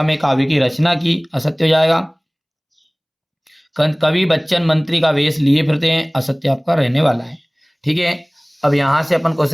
में काव्य की रचना की। असत्य हो जाएगा। कवि बच्चन मंत्री का वेश लिए फिरते हैं। असत्य आपका रहने वाला है। ठीक है। अब यहां से अपन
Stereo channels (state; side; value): identical; both; correlation 1.00